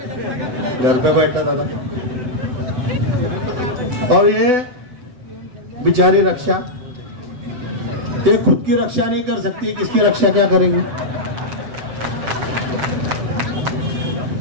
घर पे बैठा दादा। और ये बिचारी रक्षा ये खुद की रक्षा नहीं कर सकती, किसकी रक्षा क्या करेंगे?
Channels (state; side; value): late; left; 8.0 ms